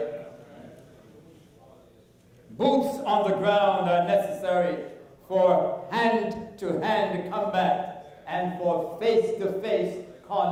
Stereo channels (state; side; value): identical; both; correlation 1.00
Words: Boots on the ground are necessary for hand-to-hand combat and for face-to-face